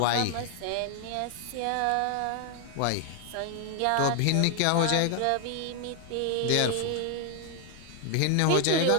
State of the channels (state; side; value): different; both; correlation 0.00